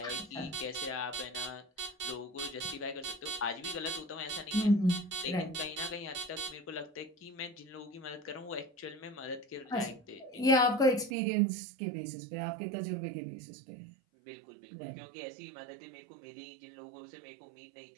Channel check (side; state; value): left; drops out; at 11.1 s